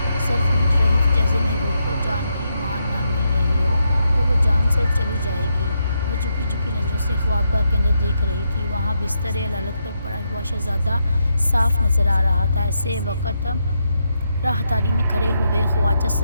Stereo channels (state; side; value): inverted; both; correlation -0.81